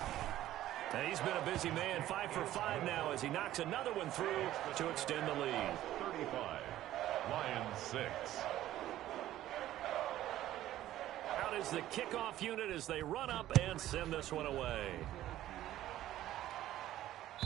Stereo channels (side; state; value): left; quieter; 13.7 dB